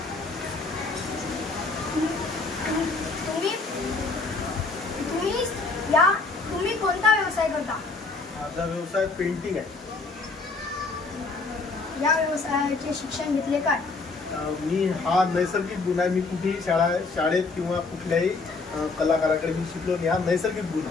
तुम्ही कोणता व्यवसाय करता? माझा व्यवसाय पेंटिंग आहे. या व्यवसायाचे शिक्षण घेतले काय? मी हा नैसर्गिक गुण आहे. मी कुठेही शाळेत किंवा कुठल्याही कलाकाराकडे मी शिकलो नाही. हा नैसर्गिक गुण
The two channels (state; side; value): quieter; right; 3.9 dB